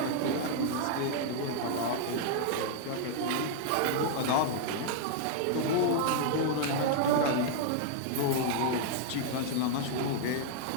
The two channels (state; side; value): different; both; correlation -0.01